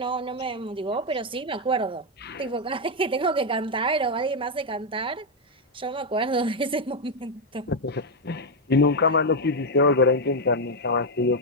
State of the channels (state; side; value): normal; both; correlation 0.03